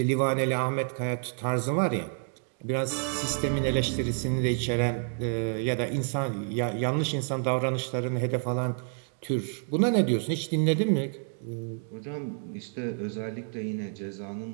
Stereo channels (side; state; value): left; silent; 59 dB below the other